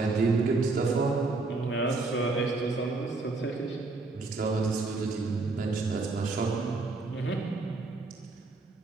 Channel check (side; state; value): left; quieter; 3.6 dB